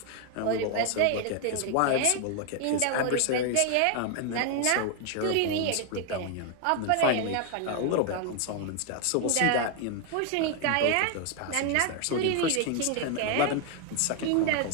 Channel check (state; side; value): different; both; correlation 0.01